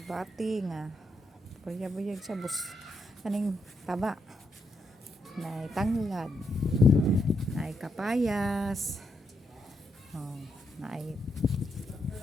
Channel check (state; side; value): normal; both; correlation 0.80